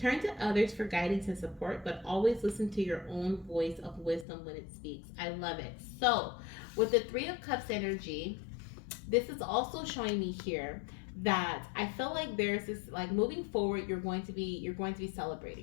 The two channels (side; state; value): right; drops out; at 4.2 s